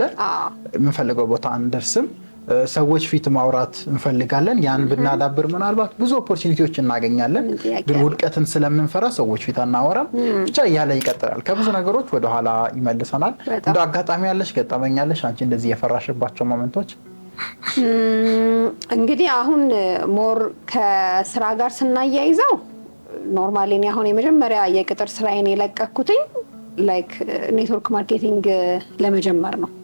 የምንፈልገው ቦታ አንደርስም። ሰዎች ፊት ማውራት እንፈልጋለን፣ ያን ብናዳብር ምናልባት ብዙ ኦፖርቹኒቲዎች እናገኛለን፣ ግን ውድቀትን ስለምንፈራ ሰዎች ፊት አናወራም። ብቻ እያለ ይቀጥላል። ከብዙ ነገሮች ወደኋላ ይመልሰናል። እንደ አጋጣሚ ያለሽ ገጠመኛለሽ አንቺ እንደዚህ የፈራሽባቸው ሞመንቶች? እንግዲህ አሁን ሞር ከስራ ጋር ስናያይዘው ኖርማሊ እኔ አሁን የመጀመሪያ የቅጥር ስራዬን የለቀኩትኝ ላይክ ኔትወርክ ማርኬቲንግ ለመጀመር ነው።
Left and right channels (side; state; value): both; inverted; correlation -1.00